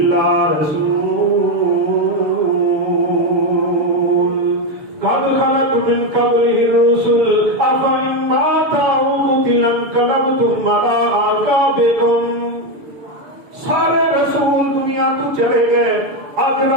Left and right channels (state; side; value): late; left; 6.7 ms